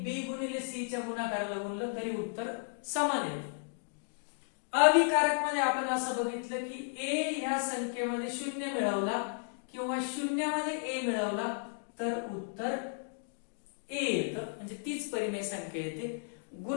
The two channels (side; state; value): right; silent; digital silence